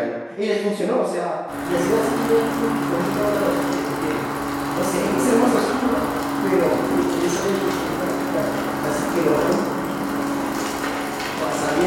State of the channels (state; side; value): identical; both; correlation 1.00